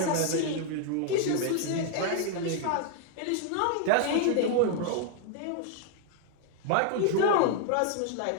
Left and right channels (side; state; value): both; different; correlation 0.00